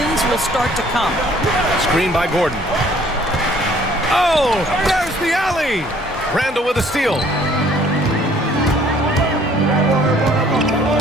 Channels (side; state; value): both; normal; correlation 0.58